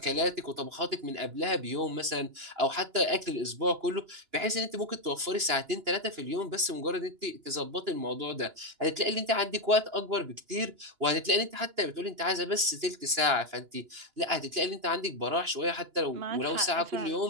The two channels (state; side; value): late; left; 2.9 ms